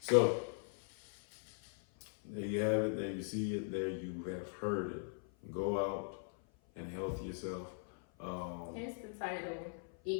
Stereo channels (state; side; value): silent; right; 51 dB below the other